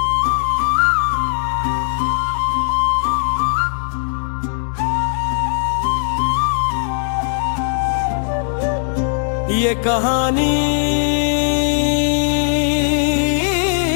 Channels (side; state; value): right; silent; 67 dB below the other